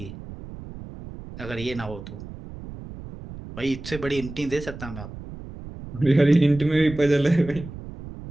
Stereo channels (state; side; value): noise; right; rumble, 13 dB below the sound